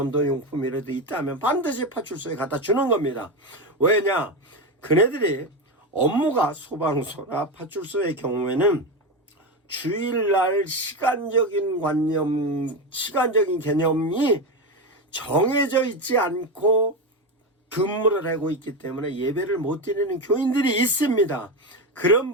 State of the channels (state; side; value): normal; both; correlation 0.16